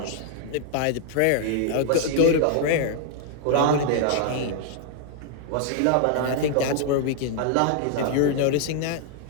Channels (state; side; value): different; both; correlation 0.00